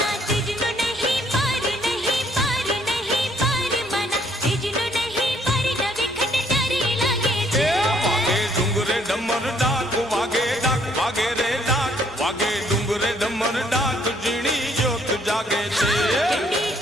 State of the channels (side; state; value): both; normal; correlation 0.66